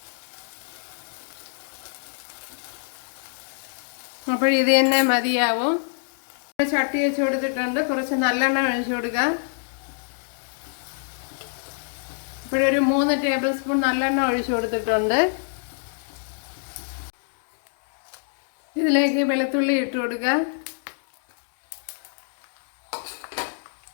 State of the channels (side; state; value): right; silent; digital silence